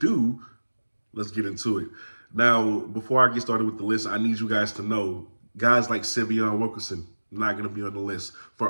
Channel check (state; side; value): inverted; both; correlation -1.00